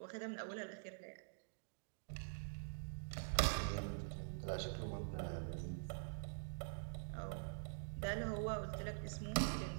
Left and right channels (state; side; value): silent; left; digital silence